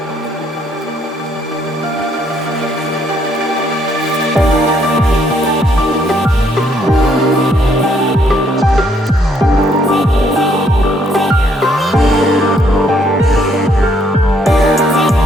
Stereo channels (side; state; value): both; normal; correlation 0.69